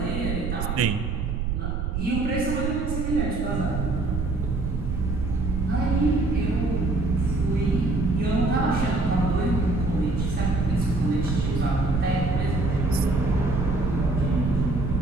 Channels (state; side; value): noise; right; rumble, 2 dB below the sound